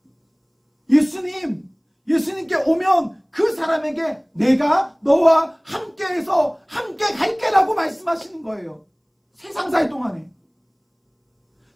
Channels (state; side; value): identical; both; correlation 1.00